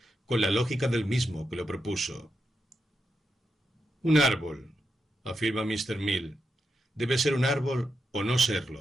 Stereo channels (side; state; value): both; normal; correlation 0.85